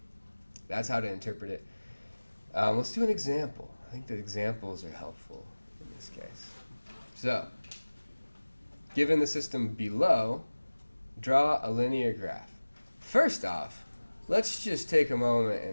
that's how to interpret it. Let's do an example. I think the examples are helpful in this case. So, given the system below, draw a linear graph. First off, let's just take a moment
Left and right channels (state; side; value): inverted; both; correlation -1.00